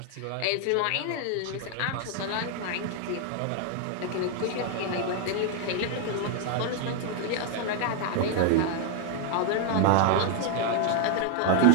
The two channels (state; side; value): different; both; correlation 0.00